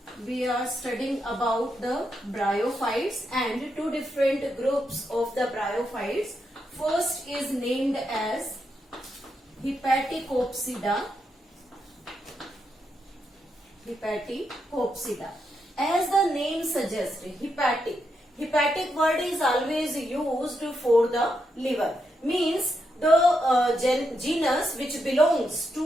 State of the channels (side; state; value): both; normal; correlation 0.83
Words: we are studying about the bryophytes and two different groups of the bryophytes. First is named as Hepaticopsida. Hepaticopsida. As the name suggests, hepatic word is always used for the liver. Means the genus which belongs